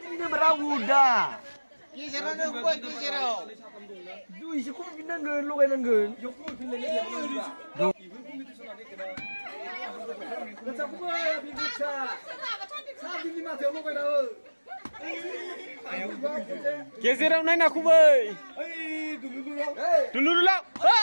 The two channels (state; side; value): inverted; both; correlation -1.00